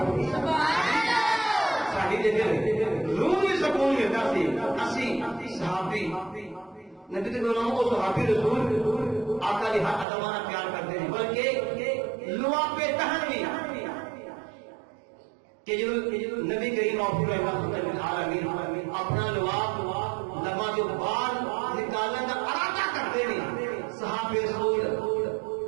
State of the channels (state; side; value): drops out; left; at 10.1 s